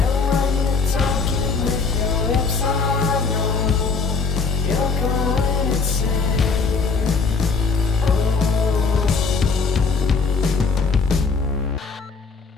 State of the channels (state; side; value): quieter; right; 4.7 dB